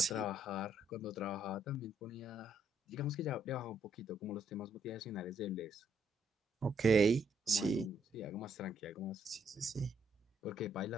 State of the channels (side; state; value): both; normal; correlation 0.72